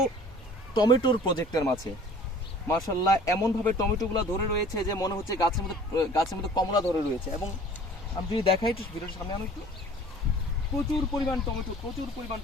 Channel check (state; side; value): normal; both; correlation 0.48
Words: টমেটোর প্রজেক্টের মাঝে। মাশাআল্লাহ, এমনভাবে টমেটোগুলো ধরে রয়েছে যে মনে হচ্ছে গাছের মধ্যে কমলা ধরে রয়েছে। এবং আমি যদি দেখাই একটু ভিডিওর সামনে আনো একটু, প্রচুর পরিমাণ